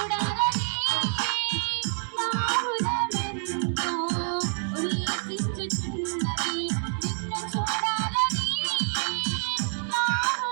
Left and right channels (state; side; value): silent; left; 56 dB below the other